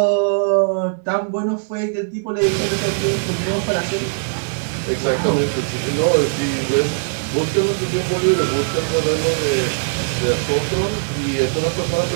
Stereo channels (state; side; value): silent; left; digital silence